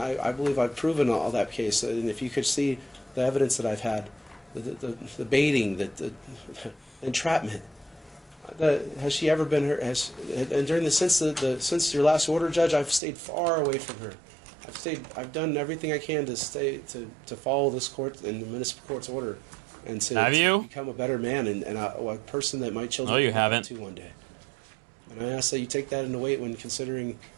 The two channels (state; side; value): drops out; left; at 13.0 s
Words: believe I've proven all that case. And if you could see the evidence that I've had, the baiting, the entrapment, has she ever been her? And during since your last order, Judge, I've stayed far away from her. I've done everything I can to follow this court and the municipal court's order, and to become a better man and a person that my children No, you can haven't. to one day. And I ask that you take that into weight when considering